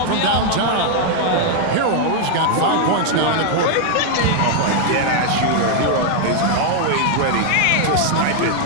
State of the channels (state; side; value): different; both; correlation 0.00